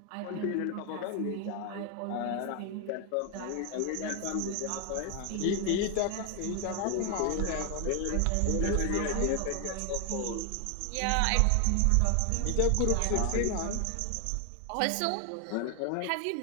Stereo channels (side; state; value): both; different; correlation 0.00